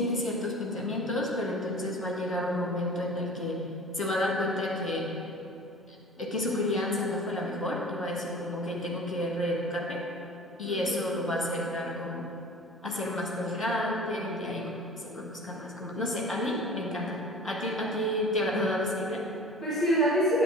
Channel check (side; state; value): both; normal; correlation 0.41